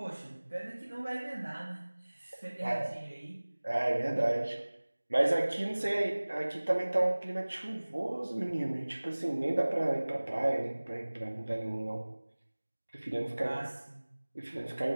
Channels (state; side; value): inverted; both; correlation -1.00